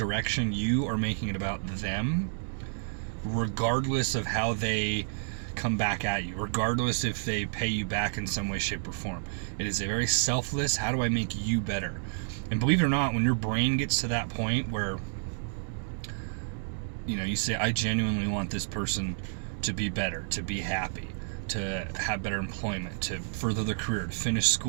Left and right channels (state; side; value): silent; left; digital silence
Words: you are making it about them, regardless of how they come back at you, regardless if they pay you back in some way, shape, or form. It is a very selfless, how do I make you better? And believe it or not, when your brain gets to that point where you say, I genuinely want this person to be better, to be happy, to have better employment, to further their career, to finish